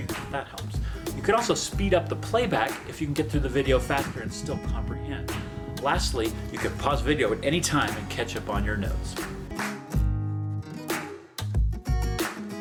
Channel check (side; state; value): both; identical; correlation 1.00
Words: if that helps. You could also speed up the playback if you can get through the video faster and still comprehend. Lastly, you could pause video at any time and catch up on your notes.